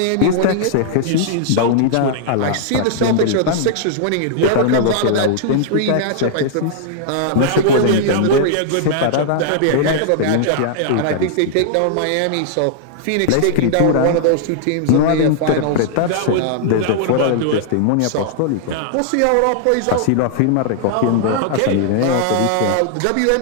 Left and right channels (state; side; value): different; both; correlation -0.01